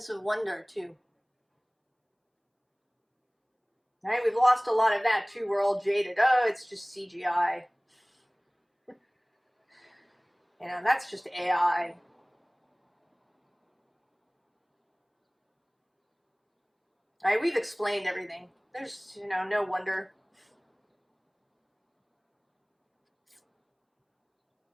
of wonder too. Right, we've lost a lot of that too. We're all jaded. Oh, it's just CGI. You know, that's just AI. Right, we've explained everything. There's, you know, no wonder.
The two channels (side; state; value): both; identical; correlation 1.00